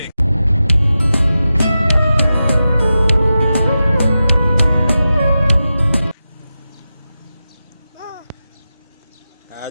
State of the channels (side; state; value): both; inverted; correlation -0.92